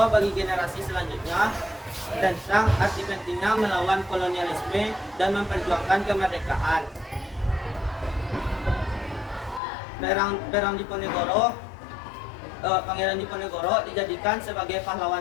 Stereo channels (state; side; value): drops out; right; at 9.6 s